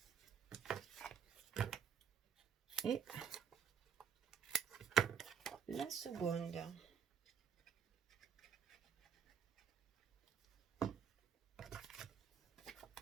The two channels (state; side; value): quieter; left; 7.5 dB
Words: Et la seconde.